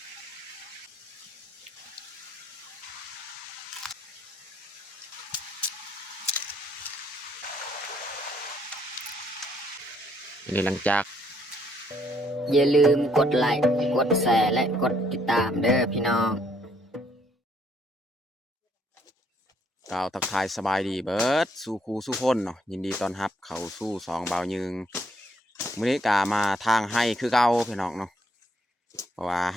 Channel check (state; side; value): normal; both; correlation 0.69